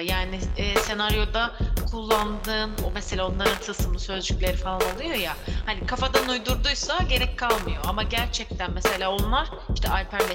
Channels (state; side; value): identical; both; correlation 1.00